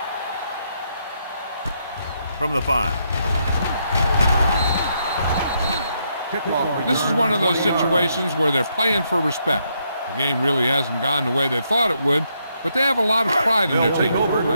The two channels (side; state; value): both; inverted; correlation -0.77